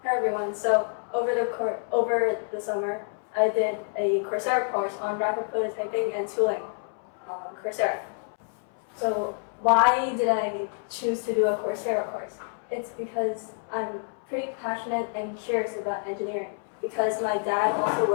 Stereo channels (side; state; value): right; silent; 60 dB below the other